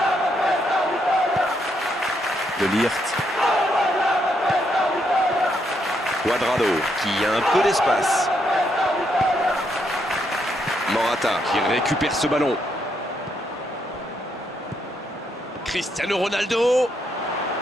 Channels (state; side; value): normal; both; correlation 0.77